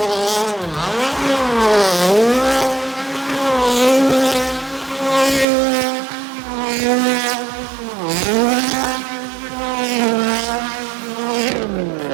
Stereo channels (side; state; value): left; drops out; at 5.5 s